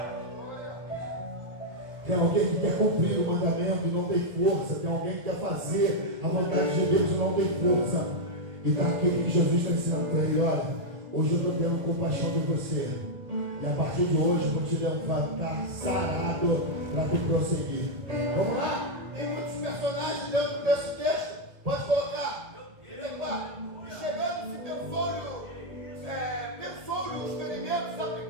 Tem alguém que quer cumprir o mandamento e não tem força. Tem alguém que quer fazer a vontade de Deus e não tem força. E está aquilo que Jesus está ensinando para ele. Olha, hoje eu estou tendo compaixão de você. E a partir de hoje eu vou te levantar sarado para tu prosseguir. Vamos lá? Tem muitos personagens dentro desse texto. Pode colocar. E chegando-se pensou-lhe os ferimentos,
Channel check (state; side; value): late; left; 1.7 ms